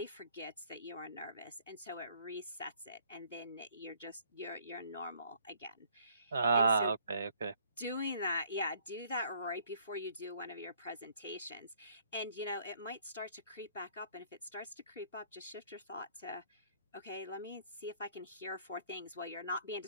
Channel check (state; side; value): inverted; both; correlation -0.61